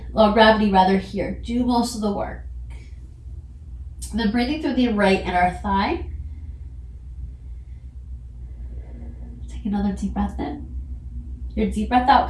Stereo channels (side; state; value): both; identical; correlation 1.00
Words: or gravity rather, here do most of the work. And then breathing through the right inner thigh. Take another deep breath in. Your deep breath